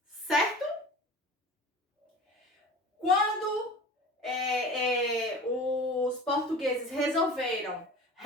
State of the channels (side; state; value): both; normal; correlation 0.38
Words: certo? Quando os portugueses resolveram